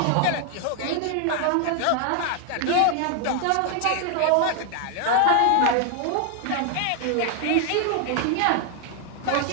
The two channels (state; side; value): different; both; correlation 0.00